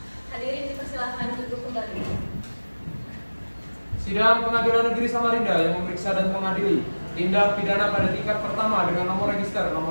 Hadirin dipersilahkan duduk kembali. Sidang Pengadilan Negeri Samarinda yang memeriksa dan mengadili tindak pidana pada tingkat pertama dengan nomor register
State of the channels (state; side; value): inverted; both; correlation -1.00